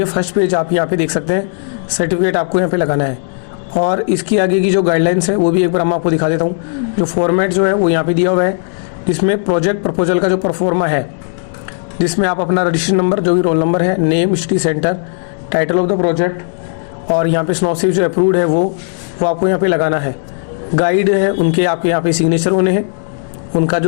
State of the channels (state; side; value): silent; right; digital silence